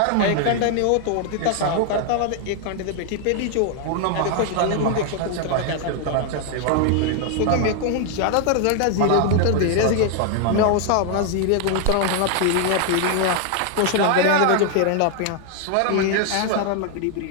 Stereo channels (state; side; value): different; both; correlation 0.00